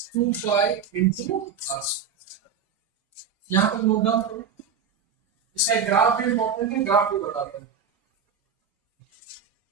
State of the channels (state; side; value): quieter; left; 6.5 dB